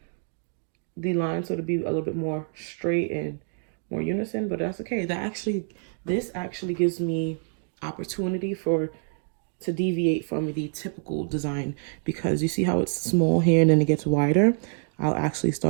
the line so to be a little bit more straight and more unison, but that's okay. This actually gives me opportunity to deviate from the typical design, because you see how it's small here and then it gets wider. I'll actually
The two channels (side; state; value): left; silent; 61 dB below the other